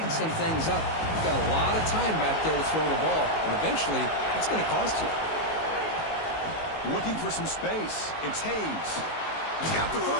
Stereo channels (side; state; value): right; late; 19 ms